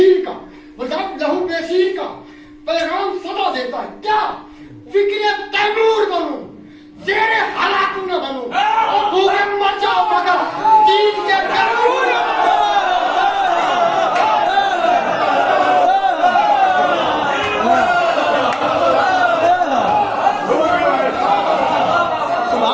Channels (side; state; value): both; identical; correlation 1.00